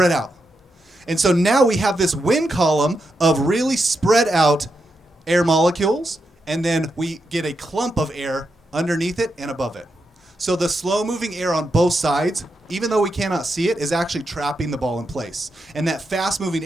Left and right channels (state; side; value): normal; both; correlation 0.85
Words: out. And so now we have this wind column of really spread out air molecules, and then we get a clump of air underneath it and above it. So the slow-moving air on both sides, even though we cannot see it, is actually trapping the ball in place. And that fast-moving